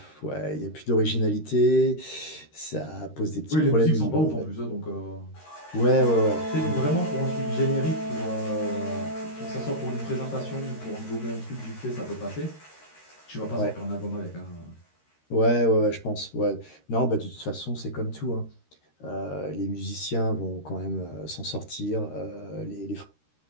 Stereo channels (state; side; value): late; right; 13 ms